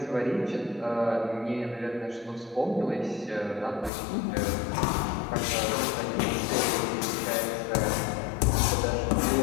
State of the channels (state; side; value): drops out; right; at 3.9 s